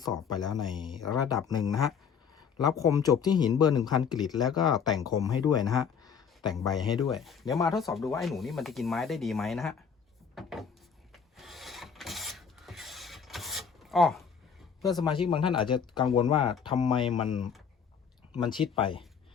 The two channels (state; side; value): quieter; right; 6.7 dB